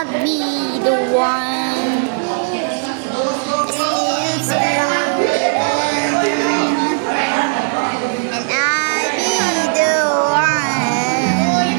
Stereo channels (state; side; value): silent; left; digital silence